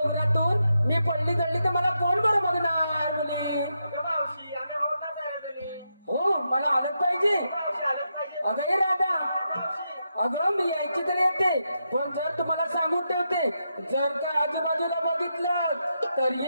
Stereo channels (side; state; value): both; inverted; correlation -0.84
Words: मी पडली जळली तर मला कोण बरं बघणार मुली मावशी आम्ही बघणार नाही हो मला आलत पाहिजे मावशी आलंच पाहिजे अगं हे राधा मावशी अगं मी यायची तर येते पण जर तुम्हाला सांगून ठेवते जर का आजूबाजूला बघितलं